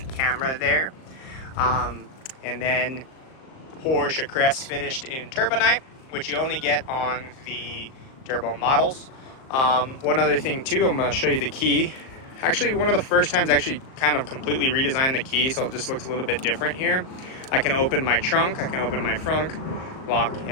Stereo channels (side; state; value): right; late; 38 ms